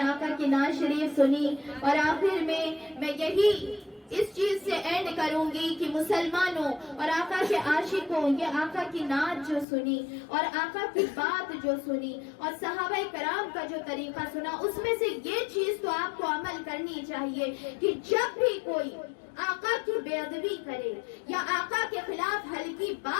آقا کی نعت شریف سنی، اور آخر میں یہی اس چیز سے اینڈ کروں گی کہ مسلمانوں اور آقا کے عاشقوں، یہ آقا کی نعت جو سنی اور آقا کی بات جو سنی اور صحابہ کرام کا جو طریقہ سنا، اس میں سے یہ چیز تو آپ کو عمل کرنی چاہیے کہ جب بھی کوئی آقا کی بے ادبی کرے یا آقا کے خلاف ہلکی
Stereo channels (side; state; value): right; drops out; at 9.7 s